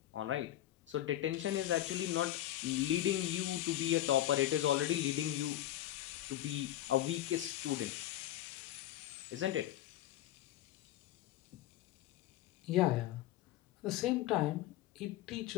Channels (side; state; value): right; quieter; 13.5 dB